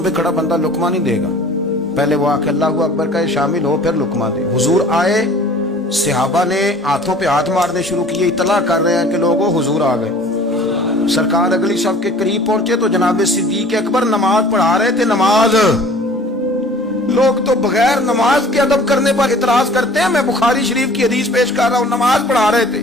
खड़ा बंदा लुकमा नहीं देगा, पहले वो आके अल्लाहु अकबर का शामिल हो फिर लुकमा दे। हुजूर आए, सहाबा ने हाथों पे हाथ मारने शुरू किए, इतला कर रहे हैं कि लोगों हुजूर आ गए। सरकार अगली सब के करीब पहुंचे तो जनाब सिद्दीक़ अकबर नमाज पढ़ा रहे थे। नमाज, लोग तो बगैर नमाज के अदब करने पर इतराज करते हैं। मैं बुखारी शरीफ की हदीस पेश कर रहा हूं, नमाज पढ़ा रहे थे,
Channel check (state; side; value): normal; both; correlation 0.48